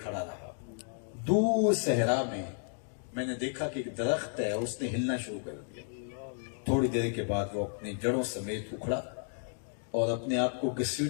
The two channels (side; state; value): right; silent; 56 dB below the other